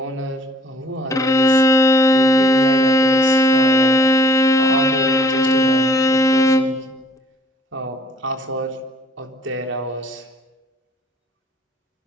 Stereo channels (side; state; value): both; normal; correlation 0.57